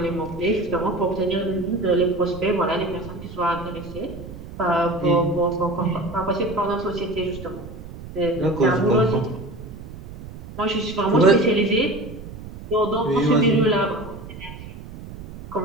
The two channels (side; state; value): right; noise; rumble, 13 dB below the sound